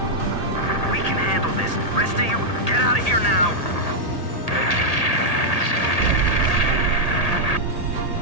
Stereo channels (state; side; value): late; right; 1.8 ms